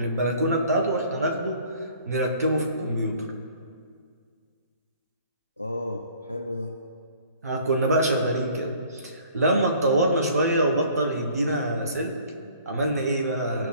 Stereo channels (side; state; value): both; inverted; correlation -0.54